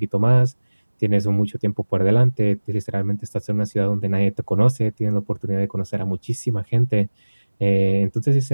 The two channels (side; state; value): both; inverted; correlation -1.00